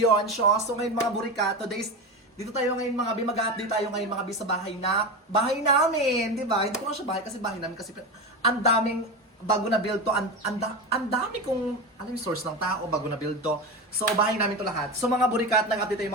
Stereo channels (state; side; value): normal; both; correlation 0.21